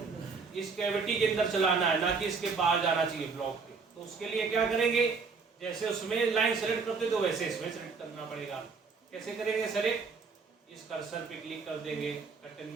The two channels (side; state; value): left; quieter; 4.8 dB